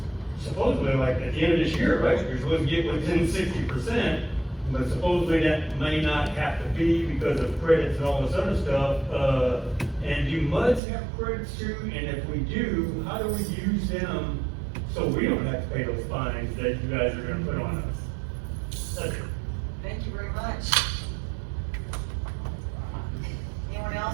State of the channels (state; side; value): drops out; left; at 10.8 s